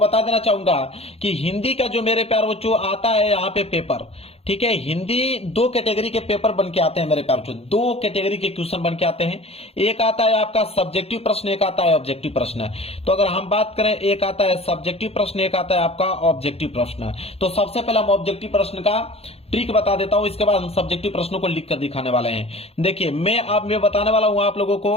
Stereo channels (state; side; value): late; right; 0.29 ms